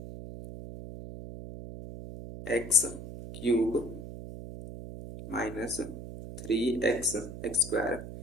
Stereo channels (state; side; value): noise; right; hum, 10 dB below the sound